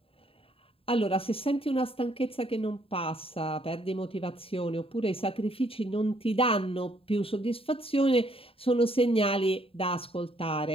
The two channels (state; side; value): late; right; 0.27 ms